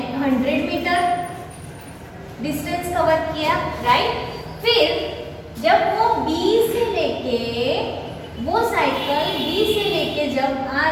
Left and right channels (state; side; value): identical; both; correlation 1.00